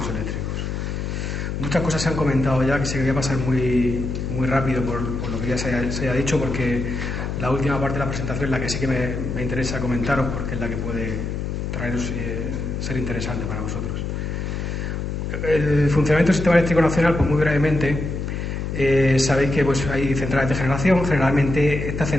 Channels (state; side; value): noise; left; hum, 3 dB below the sound